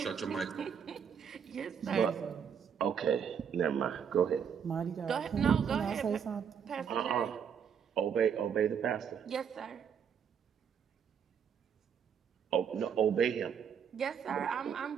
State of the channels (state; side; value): quieter; left; 7.5 dB